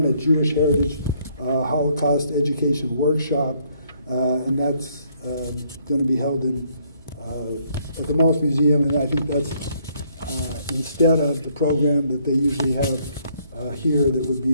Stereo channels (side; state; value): both; inverted; correlation -0.68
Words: at Jewish Heritage Holocaust Education Workshop, and that's going to be held at the Maltz Museum, and I think that's instead of the program that they usually have here that would be